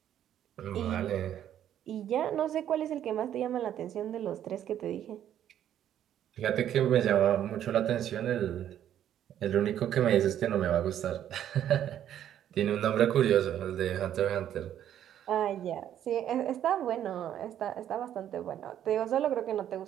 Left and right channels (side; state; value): left; quieter; 10.7 dB